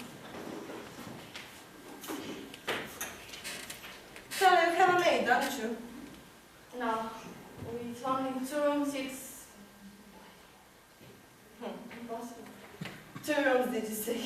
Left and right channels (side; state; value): both; identical; correlation 1.00